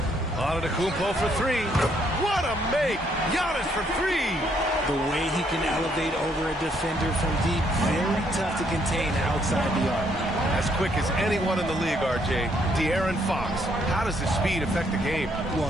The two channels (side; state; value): both; normal; correlation 0.70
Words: Antetokounmpo for 3. What a make! Giannis for 3. The way he can elevate over a defender from deep, very tough to contain outside the arc. As quick as anyone in the league, RJ. De'Aaron Fox. How does his speed affect the game? Well,